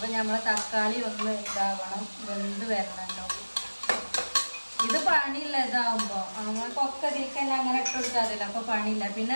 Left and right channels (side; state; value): both; inverted; correlation -1.00